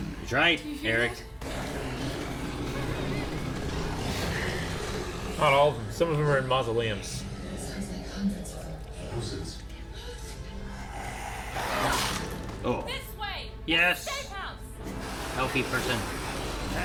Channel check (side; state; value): both; identical; correlation 1.00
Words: That's right, Eric. Not all of them. Some of them are in mausoleums. Oh, This way! yes. Safe house! Healthy person.